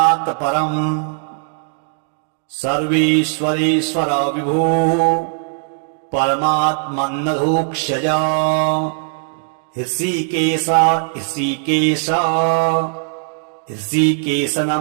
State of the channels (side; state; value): left; silent; digital silence